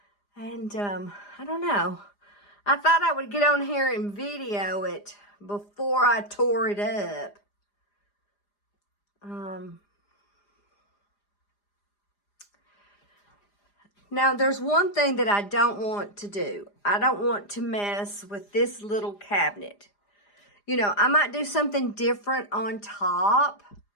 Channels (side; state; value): right; late; 4.9 ms